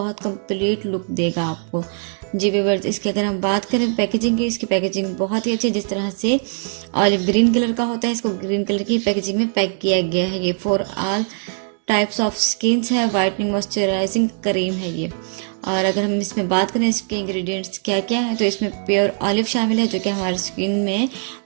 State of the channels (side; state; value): left; silent; digital silence